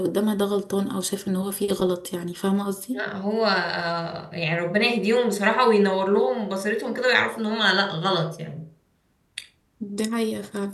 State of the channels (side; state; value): both; identical; correlation 1.00